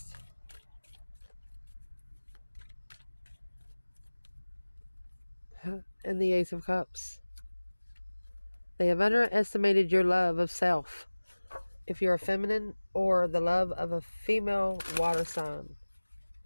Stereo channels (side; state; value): both; inverted; correlation -1.00